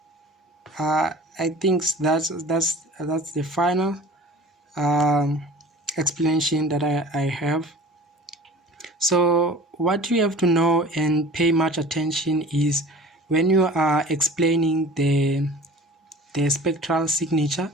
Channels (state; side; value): normal; both; correlation 0.43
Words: I think that's the final explanation that I have. So what you have to know and pay much attention is when you are explaining the spectral signature,